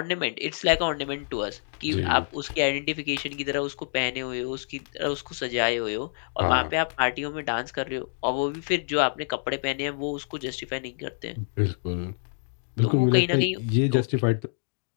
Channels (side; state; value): right; silent; digital silence